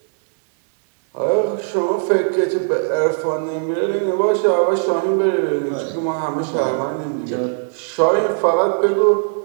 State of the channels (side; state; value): left; silent; digital silence